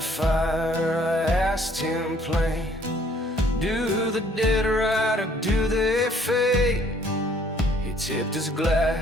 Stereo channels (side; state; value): both; normal; correlation 0.61